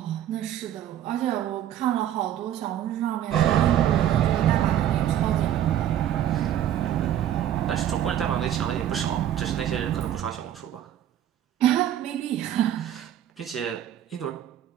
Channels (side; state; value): left; quieter; 11.1 dB